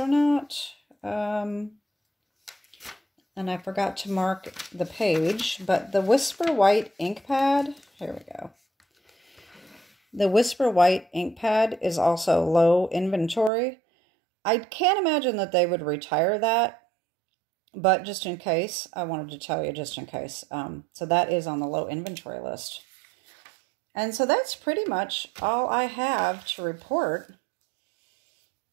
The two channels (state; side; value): drops out; left; at 13.5 s